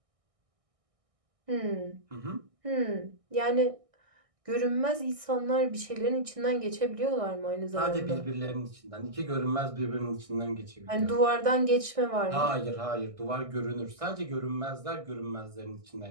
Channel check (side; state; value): left; late; 1.6 ms